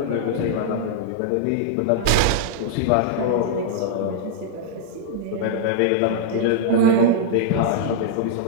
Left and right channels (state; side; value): different; both; correlation -0.02